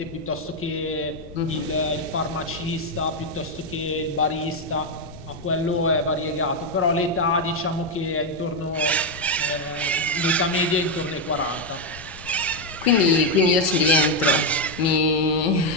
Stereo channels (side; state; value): left; noise; rumble, 18 dB below the sound